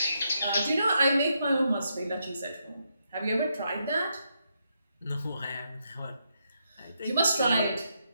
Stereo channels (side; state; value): both; inverted; correlation -0.80